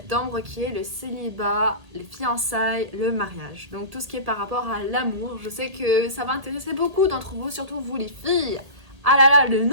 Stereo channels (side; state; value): left; late; 1.8 ms